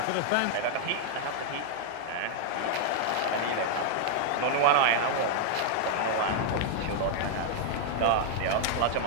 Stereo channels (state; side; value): different; both; correlation 0.00